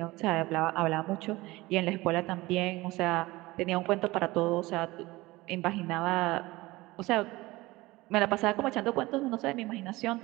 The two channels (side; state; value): left; quieter; 20.1 dB